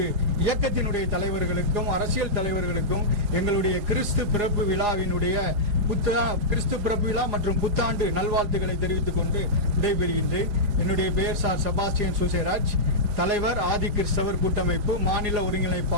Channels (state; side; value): late; left; 4.9 ms